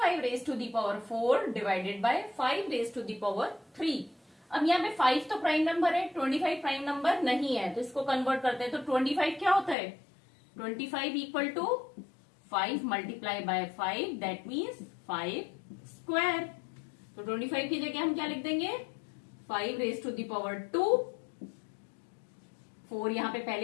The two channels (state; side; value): drops out; right; at 9.8 s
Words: raise to the power 4 divided by 5 raise to the power 3। अब यहाँ पे 5 तो प्राइम नंबर है, 25 प्राइम नंबर नहीं है, तो इसको कन्वर्ट करते हैं। तो 25 क्या होता है, 25 equal to 5 multiply by 5, that means 5 square. तो 25 की जगह हम क्या लिख देंगे, 5 रेज टू दी पावर 2। 4 यहाँ पे